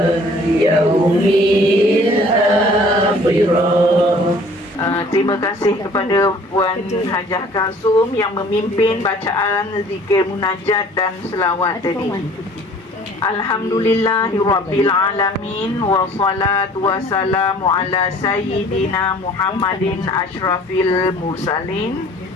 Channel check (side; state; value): both; normal; correlation 0.52